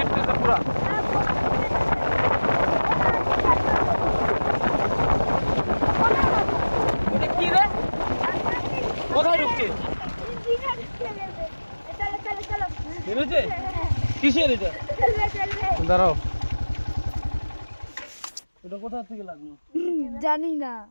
পুরা। এটা কি রে, কোথায় ঢুকছে? নেমেছে? কিসের এটা? দাঁড়াও, এটা কোথা থেকে লাগলো? জানি না।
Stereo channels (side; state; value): both; inverted; correlation -1.00